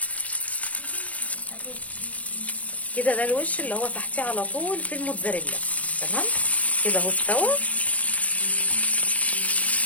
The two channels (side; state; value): right; late; 0.069 ms